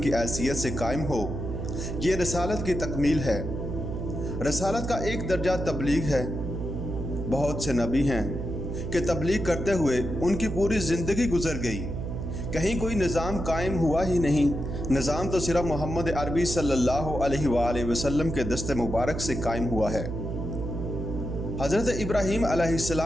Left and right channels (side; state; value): right; noise; hum, 5 dB below the sound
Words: हैसियत से कायम हो, ये रसालत की तकमील है। रसालत का एक दर्जा तबलीग है। बहुत से नबी हैं कि तबलीग करते हुए उनकी पूरी ज़िंदगी गुजर गई, कहीं कोई निज़ाम कायम हुआ ही नहीं। निज़ाम तो सिर्फ मोहम्मद अरबी सल्लल्लाहु अलैहि वसल्लम के दस्ते मुबारक से कायम हुआ है। हज़रत इब्राहीम